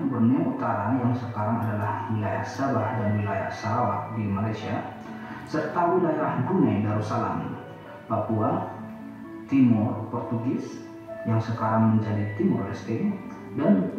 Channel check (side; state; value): both; identical; correlation 1.00